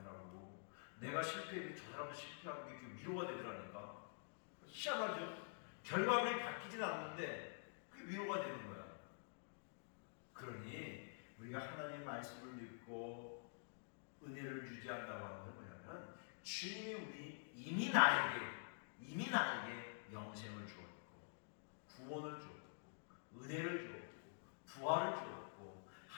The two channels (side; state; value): right; silent; digital silence